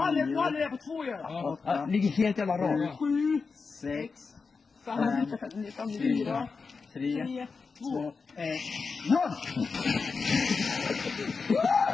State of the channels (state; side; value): quieter; right; 4.8 dB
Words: har det på 2 ju. Ja, ligger helt jävla rakt. 7, 6, 5, 4, 3, 2, 1, 0!